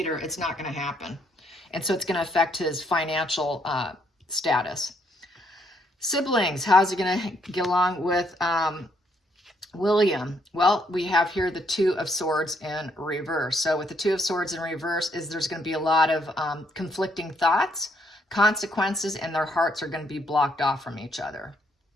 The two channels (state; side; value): normal; both; correlation 0.71